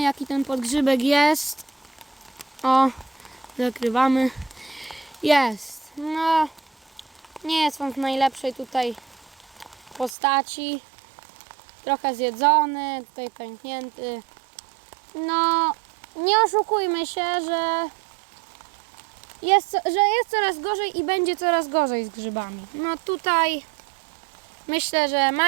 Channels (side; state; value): left; drops out; at 10.1 s